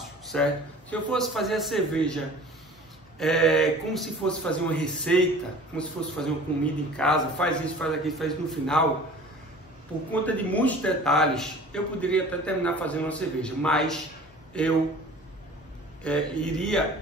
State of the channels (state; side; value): normal; both; correlation 0.44